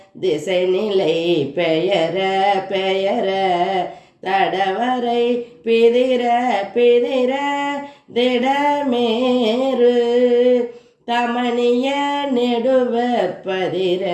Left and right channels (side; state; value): both; identical; correlation 1.00